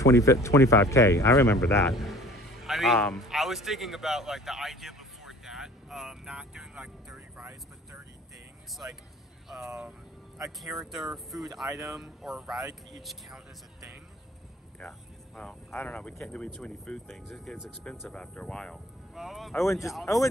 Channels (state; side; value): normal; both; correlation 0.48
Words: I remember that. I mean, I was thinking about like the idea before that, not doing like 30 rides, but 30 things, like a character, food item, or a ride could each count as a thing. Yeah. Well, I don't know. We can't do too many food things. It gets expensive after a while. Well,